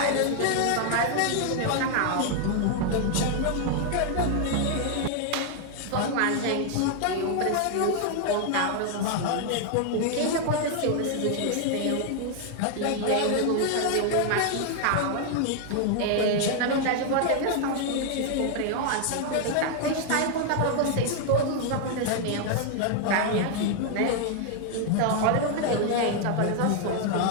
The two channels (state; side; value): different; both; correlation 0.00